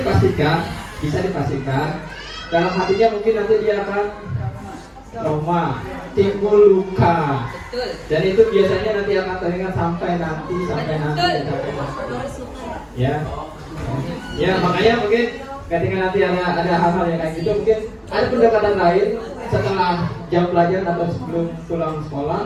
dalam hatinya mungkin nanti dia akan trauma, timbul luka, dan itu biasanya nanti akan teringat sampai nanti. Ya makanya mungkin ketika nanti ada hal-hal yang kayak gitu, mungkin ada pendekatan lain setelah jam pelajaran atau sebelum pulang sekolah.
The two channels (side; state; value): both; identical; correlation 1.00